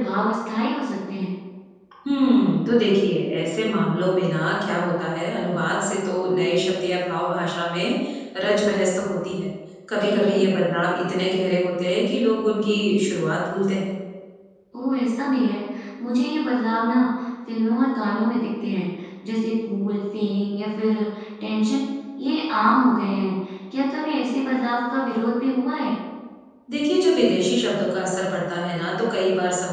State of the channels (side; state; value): both; identical; correlation 1.00